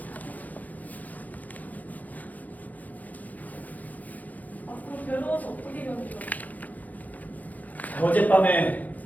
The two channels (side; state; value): right; late; 0.079 ms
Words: 앞으로 괴로워서 어떻게 견디려? 어젯밤에